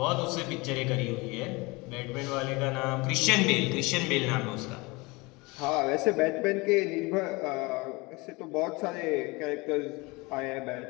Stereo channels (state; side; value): quieter; right; 25.0 dB